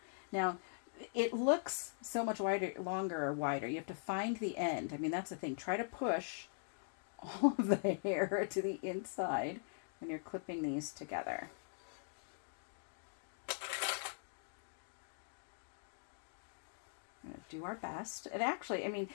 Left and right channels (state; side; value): silent; right; digital silence